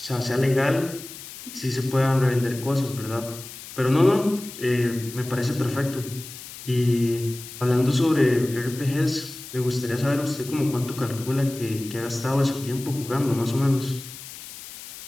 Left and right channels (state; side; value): noise; left; hiss, 14 dB below the sound